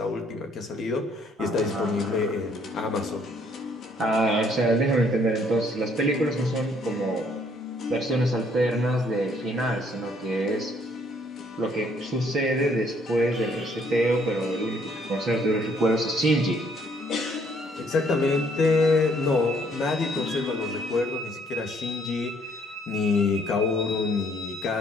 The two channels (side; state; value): both; normal; correlation 0.65